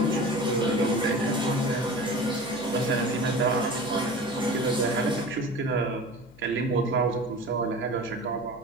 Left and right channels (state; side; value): noise; left; hum, 23 dB below the sound